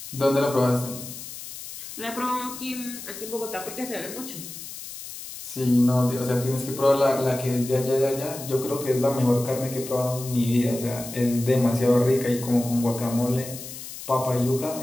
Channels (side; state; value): left; noise; hiss, 11 dB below the sound